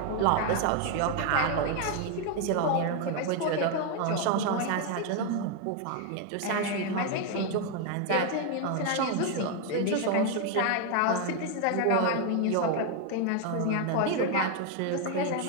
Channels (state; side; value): different; both; correlation 0.01